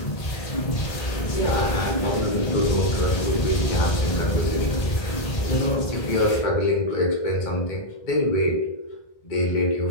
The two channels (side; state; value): right; late; 1.8 ms